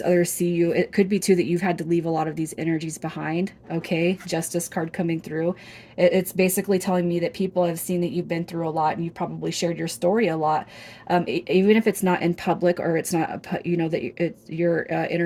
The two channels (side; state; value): both; identical; correlation 1.00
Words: others see you, it could be too that you've had to leave a lot of these energies behind. Okay, Justice card coming through. It's basically telling me that people have seen that you've been through a lot and you've probably shared your story a lot. Even if it's not in public or it's not, that your